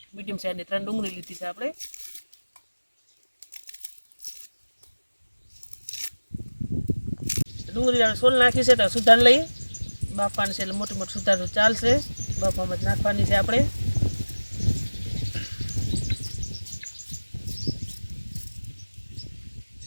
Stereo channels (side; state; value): both; inverted; correlation -1.00